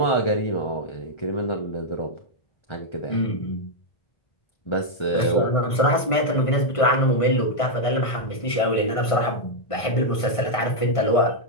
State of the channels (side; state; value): right; late; 1.5 ms